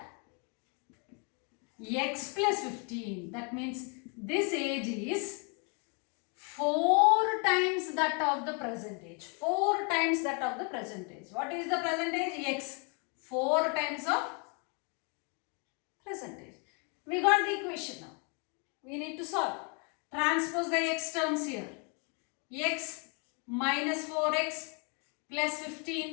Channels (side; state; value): right; quieter; 36.3 dB